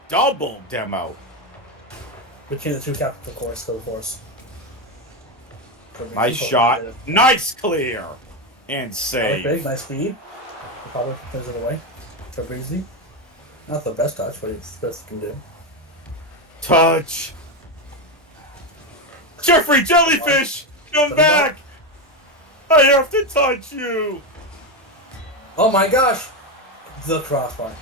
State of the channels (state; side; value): normal; both; correlation 0.11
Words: double demo. Between the two captains, of course, for the force. Nice shot. Nice clear. And save. Big, nice speed. Probably turns it away. For Breezy. Not the best touch, but it's the best he can do. Touch. Jeffrey Jellyfish, come back. I have to touch you. Oh my gosh. The crossbar.